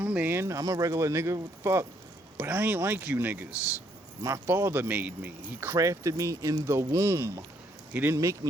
a man. I'm a regular nigga. What the fuck? But I ain't like you niggas. My Father made me. He crafted me in the womb. He didn't make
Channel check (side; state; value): both; normal; correlation 0.70